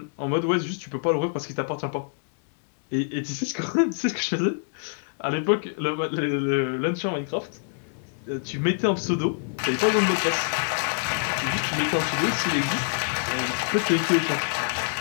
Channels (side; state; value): right; silent; digital silence